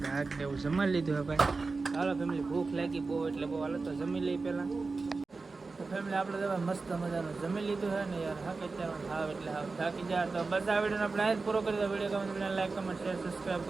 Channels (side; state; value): left; quieter; 4.0 dB